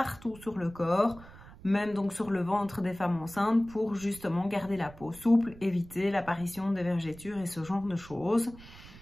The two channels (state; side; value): noise; right; rumble, 19 dB below the sound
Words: sur le corps, même donc sur le ventre des femmes enceintes pour justement garder la peau souple, éviter l'apparition des vergetures et ce genre de choses.